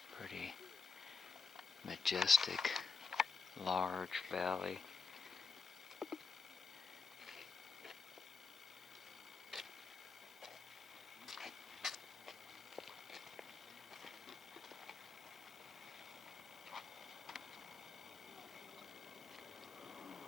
Pretty majestic, large valley.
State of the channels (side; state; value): right; quieter; 4.8 dB